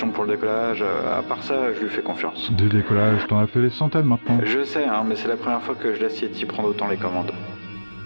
pour le décollage, à part ça, je lui fais confiance. Des décollages, t'en as fait des centaines maintenant. Je sais, hein, mais c'est la première fois que je laisse Yeti prendre autant les commandes.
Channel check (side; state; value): both; inverted; correlation -1.00